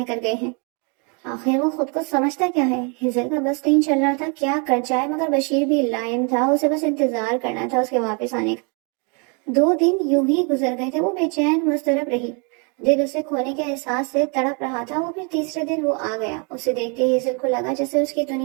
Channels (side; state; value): left; quieter; 35.4 dB